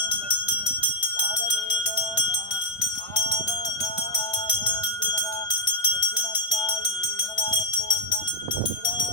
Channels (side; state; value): right; late; 1.5 ms